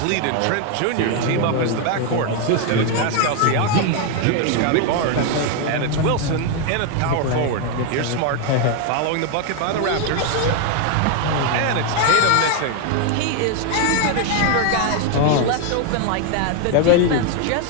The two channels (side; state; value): both; different; correlation 0.01